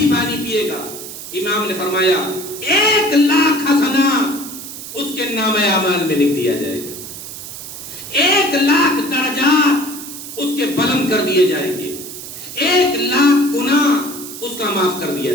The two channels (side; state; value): right; noise; hiss, 11 dB below the sound